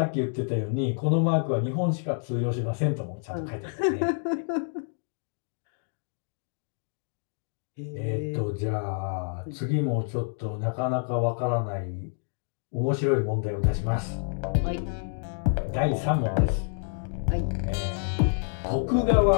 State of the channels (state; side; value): silent; right; digital silence